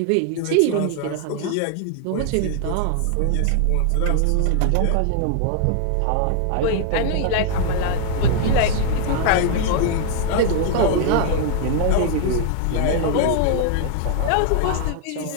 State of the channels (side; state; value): both; different; correlation 0.00